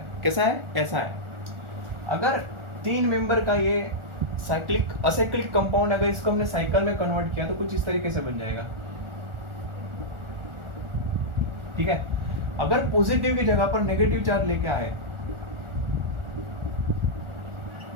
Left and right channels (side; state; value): left; late; 1.4 ms